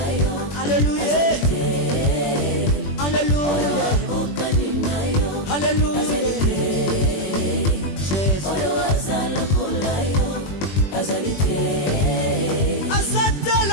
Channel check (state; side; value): late; right; 21 ms